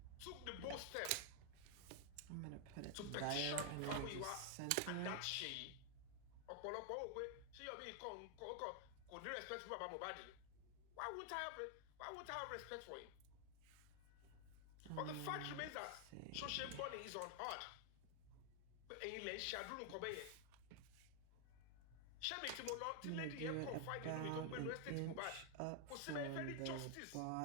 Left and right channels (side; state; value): both; different; correlation 0.00